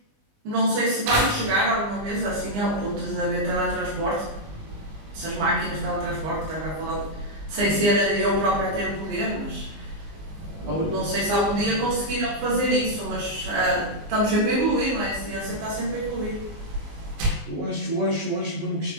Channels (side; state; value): left; late; 19 ms